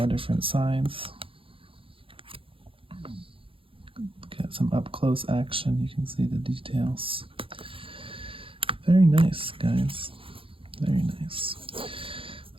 different sides. Get some up-close action. You can see the details. Very nice, guys. Very nice.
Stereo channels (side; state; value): left; late; 0.26 ms